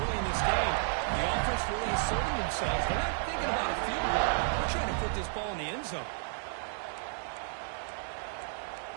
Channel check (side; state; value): left; silent; digital silence